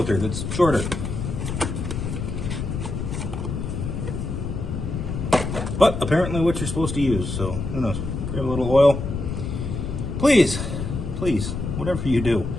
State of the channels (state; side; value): noise; left; rumble, 4 dB below the sound